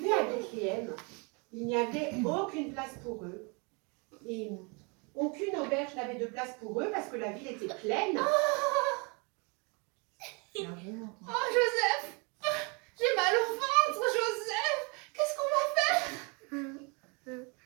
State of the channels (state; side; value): quieter; left; 32.2 dB